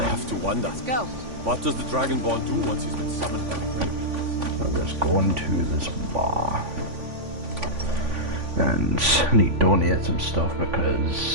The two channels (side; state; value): left; late; 3.5 ms